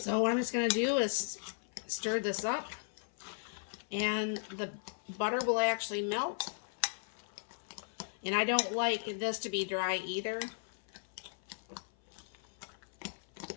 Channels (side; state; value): right; silent; 53 dB below the other